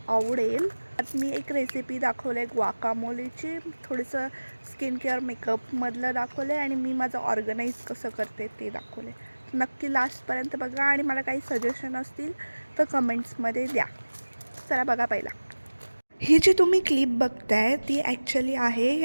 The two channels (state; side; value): inverted; both; correlation -1.00